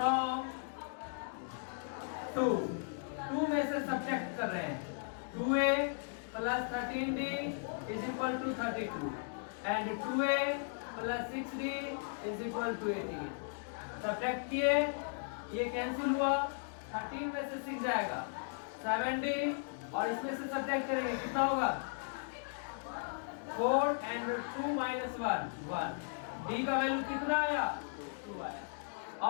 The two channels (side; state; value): right; silent; digital silence